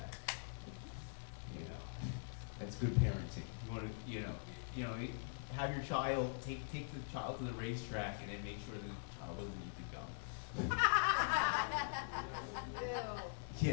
You know, that's good parenting. You want to, have your child take the child to the racetrack, and then make sure the child doesn't eat the gum. Ew.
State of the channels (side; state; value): right; silent; digital silence